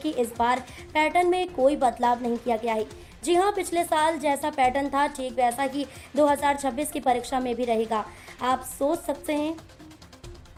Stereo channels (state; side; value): identical; both; correlation 1.00